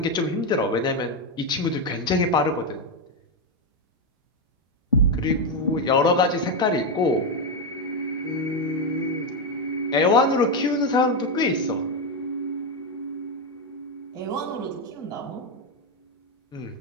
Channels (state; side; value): normal; both; correlation 0.06